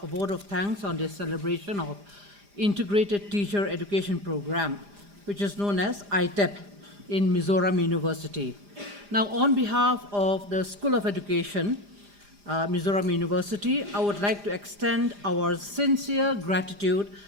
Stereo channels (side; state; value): left; late; 4.9 ms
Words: a vote of thanks on this celebration of Integrated Teacher Education Program, which is known as ITEP in Mizoram University. Now, on behalf of the School of Education, Mizoram University, I would like to extend our sincere gratitude